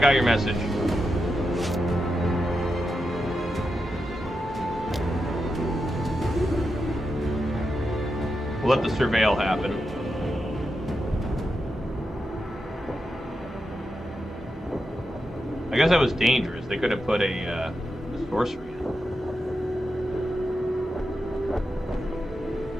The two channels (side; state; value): both; normal; correlation 0.87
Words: your message. We'll let the surveil happen. I guess that was dangerous. They could have put a sorcery in.